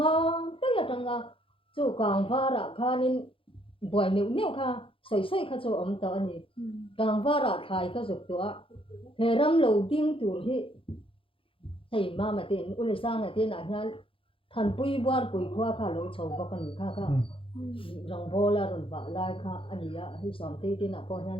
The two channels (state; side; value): late; right; 0.26 ms